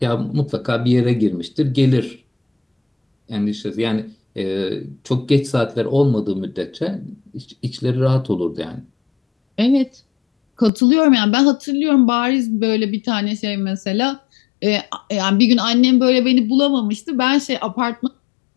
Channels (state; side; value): drops out; right; at 10.7 s